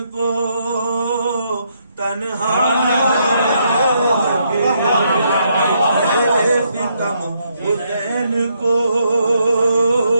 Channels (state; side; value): inverted; both; correlation -0.75